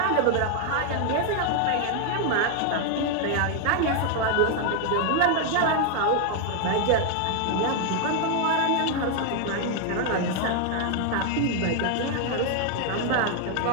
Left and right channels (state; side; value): different; both; correlation 0.00